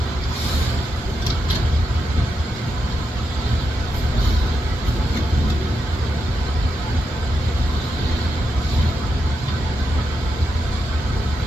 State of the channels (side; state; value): both; normal; correlation 0.85